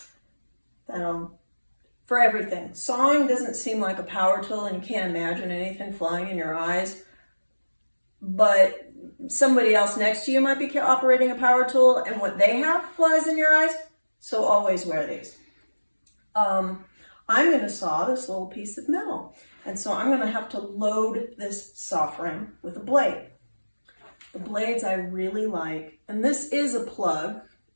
for everything. Sawing doesn't seem like a power tool, and you can't imagine anything flying in your eyes, but somebody else next to you might be operating a power tool, and what they have flies in your eyes, so always wear these. I'm going to saw this little piece of metal, and so I'm going to have to load this saw frame with a blade. The blades I really like, and this is a plug,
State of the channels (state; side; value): inverted; both; correlation -1.00